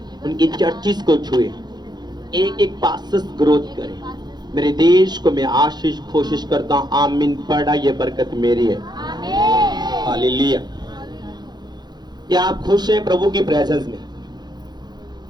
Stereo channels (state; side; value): late; left; 0.20 ms